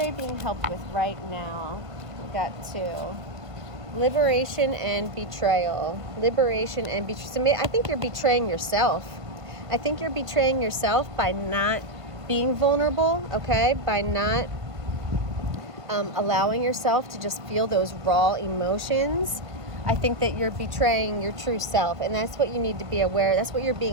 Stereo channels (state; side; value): late; left; 1.5 ms